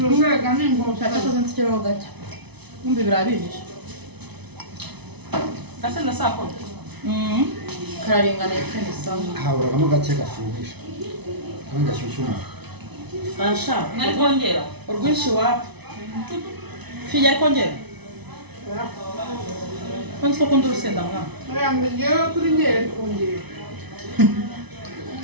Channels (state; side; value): late; left; 0.99 ms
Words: umwega n'ingota Cyakoze nsikiraho gake. Kumbe birabihishe. Gase na sako. Kararinganiye kandi sawa. haburagamo gake gashyuhisha kandi gashyushya umuntu Asha. Nari kongera. Urwinshi wapi? Fija ari kongera? Kwanza ko kundi urusenda mwana. yambe ngewe kuri ngere kongera